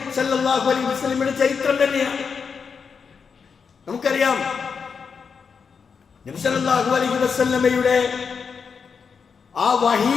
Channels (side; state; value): right; quieter; 5.9 dB